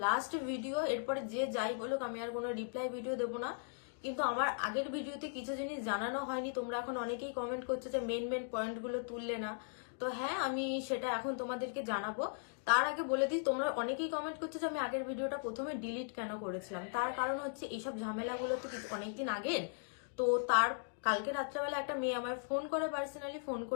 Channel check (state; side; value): silent; right; digital silence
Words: লাস্ট ভিডিও, এরপরে যে যাই বলুক আমি আর কোনো রিপ্লাই ভিডিও দেবো না। কিন্তু আমার আগের ভিডিওতে কিছু জিনিস জানানো হয়নি, তোমরা এখন অনেকেই কমেন্ট করছো যে মেন পয়েন্টগুলো তুললে না। তো হ্যাঁ, আমি সেটা এখন তোমাদেরকে জানাবো। তার আগে বলে দিই, তোমরা অনেকেই কমেন্ট করছো যে আমি আগের ভিডিওটা প্রথমে ডিলিট কেন করেছিলাম। তার কারণ হচ্ছে এইসব ঝামেলাগুলো তো অনেকদিন আগের। তো তার কালকে রাত্রেবেলা একটা মেয়ে আমার ফোন করে, পার্সোনালি ফোন